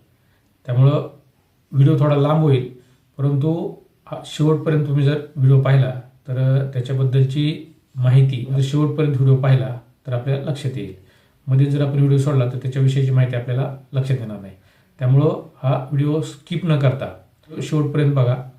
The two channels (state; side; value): identical; both; correlation 1.00